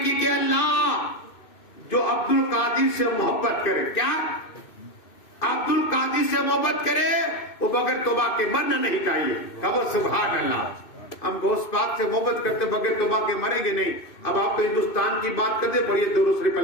کہ اللہ جو عبد القادر سے محبت کرے، کیا عبد القادر سے محبت کرے وہ بغیر توبہ کے مرنا نہیں چاہیے۔ کہو سبحان اللہ۔ ہم غوث پاک سے محبت کرتے بغیر توبہ کے مریں گے نہیں۔ اب آپ کو ہندوستان کی بات کرتے، پڑھیے درود شریف،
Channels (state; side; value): late; right; 2.6 ms